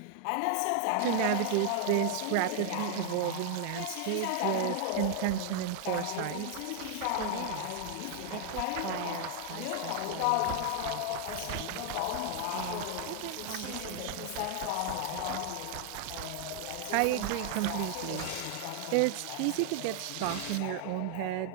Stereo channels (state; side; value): different; both; correlation 0.00